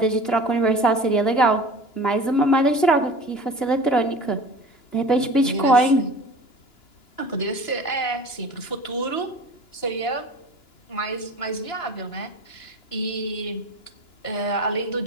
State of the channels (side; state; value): right; late; 2.9 ms